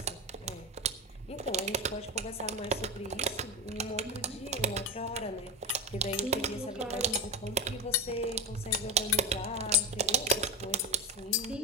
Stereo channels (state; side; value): normal; both; correlation 0.16